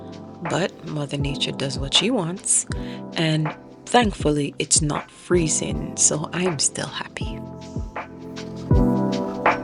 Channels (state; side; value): identical; both; correlation 1.00